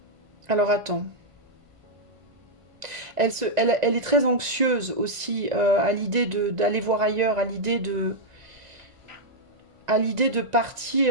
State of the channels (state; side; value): late; left; 1.9 ms